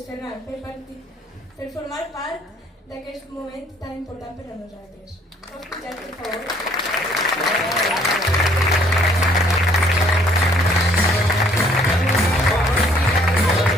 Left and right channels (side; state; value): both; normal; correlation 0.62